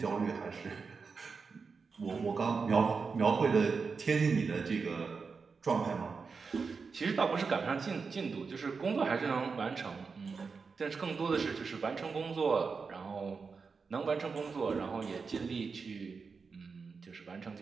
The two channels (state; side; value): quieter; left; 5.0 dB